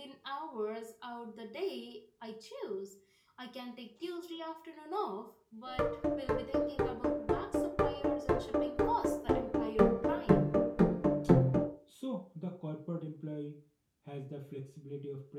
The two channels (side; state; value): both; identical; correlation 1.00